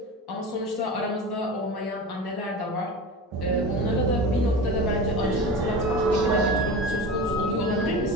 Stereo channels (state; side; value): normal; both; correlation 0.30